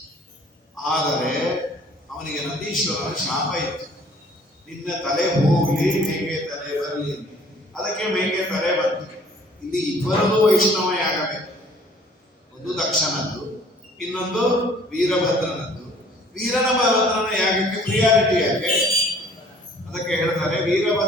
ಆದರೆ ಅವನಿಗೆ ನಂದೀಶ್ವರನ ಶಾಪ ಇತ್ತು, ನಿನ್ನ ತಲೆ ಹೋಗ್ಲಿ ಮೇಕೆ ತಲೆ ಬರಲಿ. ಅದಕ್ಕೆ ಮೇಕೆ ತಲೆ ಬಂತು. ಇಲ್ಲಿ ಇಬ್ಬರದು ವೈಷ್ಣವ ಯಾಗಬೇಕು, ಒಂದು ದಕ್ಷನದ್ದು, ಇನ್ನೊಂದು ವೀರಭದ್ರನದ್ದು. ವೀರಭದ್ರನ ಯಾಗಕ್ಕೆ ಪ್ರಿಯಾರಿಟಿ ಯಾಕೆ? ಅದಕ್ಕೆ ಹೇಳ್ತಾರೆ,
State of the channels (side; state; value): both; normal; correlation 0.55